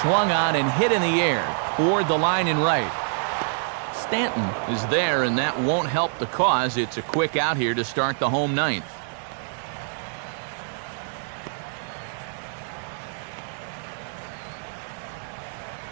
swung on and hit in the air toward the line and right. Stanton is there, and that won't help the cause. It's a quick out here to start the home 9th.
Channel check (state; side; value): silent; left; 61 dB below the other